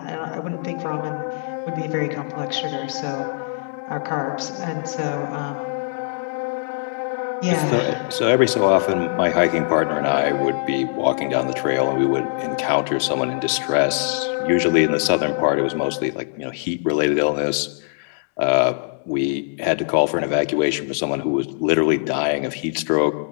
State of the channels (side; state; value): right; silent; digital silence